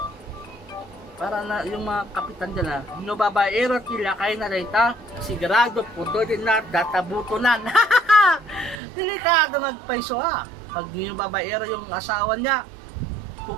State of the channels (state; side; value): drops out; left; at 8.8 s